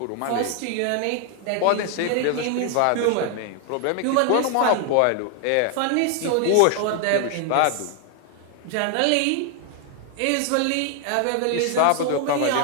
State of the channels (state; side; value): different; both; correlation 0.00